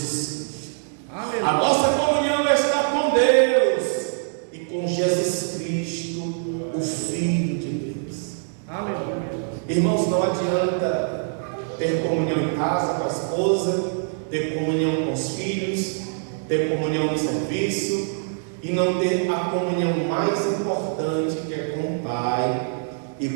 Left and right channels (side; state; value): left; silent; digital silence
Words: Cristo. Amém. A nossa comunhão está com Deus e com Jesus Cristo, o Filho de Deus. Amém. Irmãos, não adianta ter comunhão em casa com a esposa, ter comunhão com os filhos, ter comunhão no serviço e não ter a comunhão mais importante, que é com o Pai